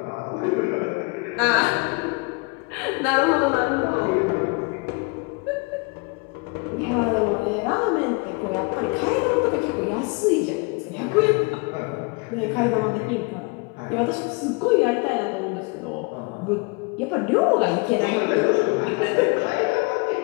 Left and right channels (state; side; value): quieter; right; 30.1 dB